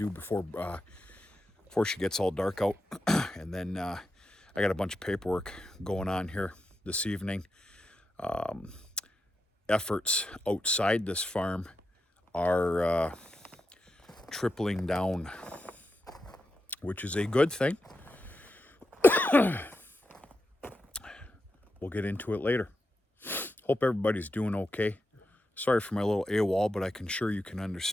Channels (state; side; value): normal; both; correlation 0.88